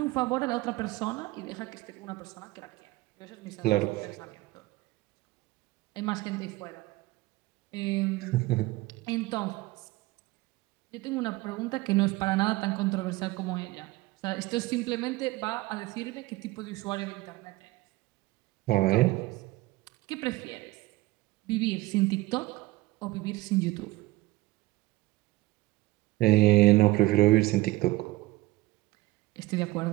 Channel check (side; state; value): left; quieter; 19.2 dB